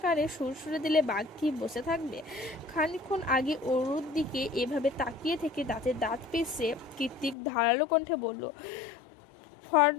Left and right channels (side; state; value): right; drops out; at 7.4 s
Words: কানে সুরসুরে দিলে বাঘ কি বসে থাকবে? খানিকক্ষণ আগে অরুর দিকে এভাবে তাকিয়ে থেকে দাঁতে দাঁত পিষে কীর্তিক ধারালো কণ্ঠে বলল,